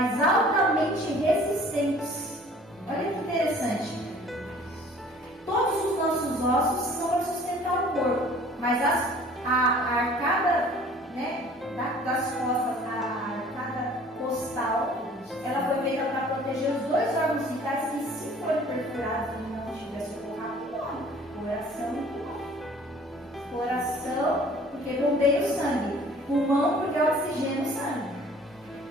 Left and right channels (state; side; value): normal; both; correlation 0.51